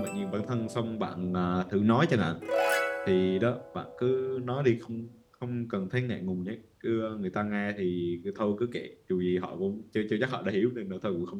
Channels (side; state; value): both; identical; correlation 1.00